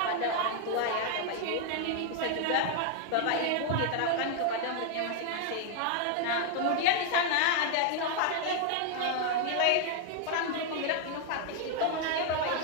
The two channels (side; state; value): both; different; correlation 0.00